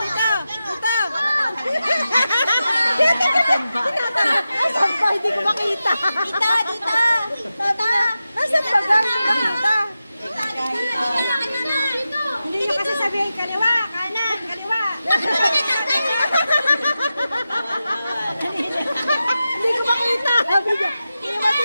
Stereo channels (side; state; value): both; inverted; correlation -0.92